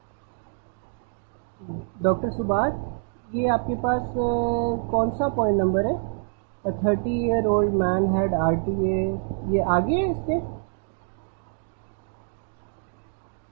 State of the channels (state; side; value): silent; left; 61 dB below the other